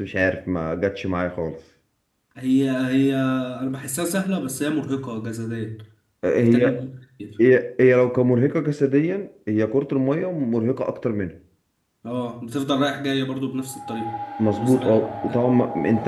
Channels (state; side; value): identical; both; correlation 1.00